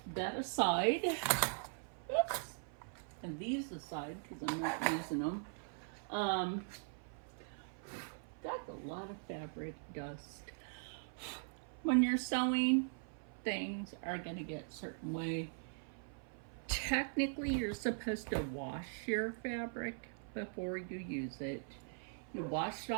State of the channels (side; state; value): left; silent; 51 dB below the other